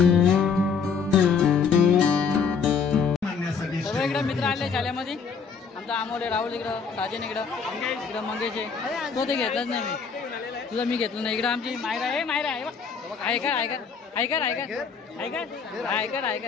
सगळे इकडे मित्र आले शाळेमध्ये. आमचा अमोल, राहुल इकडं, साजन इकडं मंगेश आहे. तो ते घेतलंच नाही मी. तुझं मी घेतलं नाही. इकडं आमची मायरा आहे. मायरा आहे बघ. ऐकर ऐकर ऐकर ऐकर ऐकर ऐकर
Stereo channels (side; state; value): right; quieter; 5.8 dB